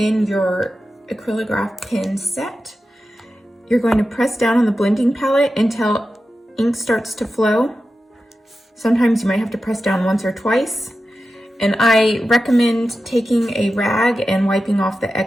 your acrylograph pen set. You're going to press down on the blending palette until ink starts to flow. Sometimes you might have to press down once or twice. And I recommend taking a rag and wiping off the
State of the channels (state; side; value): normal; both; correlation 0.92